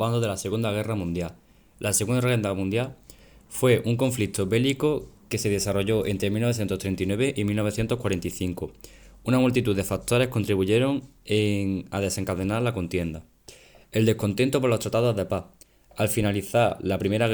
de la Segunda Guerra Mundial. La Segunda Guerra Mundial fue un conflicto bélico que se desarrolló entre 1939 y 1945. Una multitud de factores contribuyeron a desencadenar la contienda. El descontento por los tratados de paz. Al finalizar la Primera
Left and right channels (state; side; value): identical; both; correlation 1.00